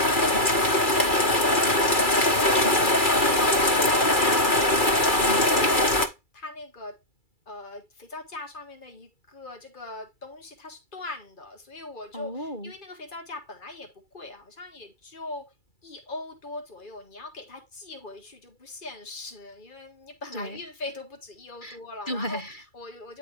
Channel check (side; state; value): right; late; 2.4 ms